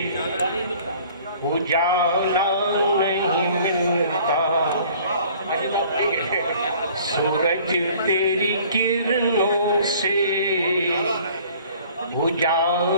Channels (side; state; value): both; inverted; correlation -0.52